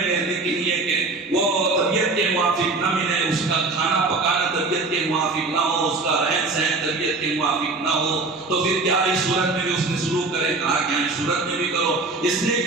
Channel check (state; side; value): quieter; left; 3.5 dB